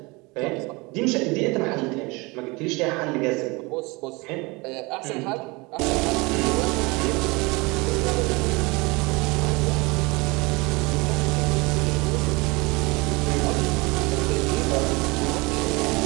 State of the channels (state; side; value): quieter; left; 25.6 dB